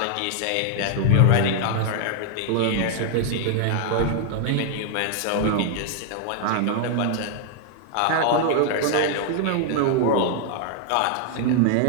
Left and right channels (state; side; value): different; both; correlation 0.00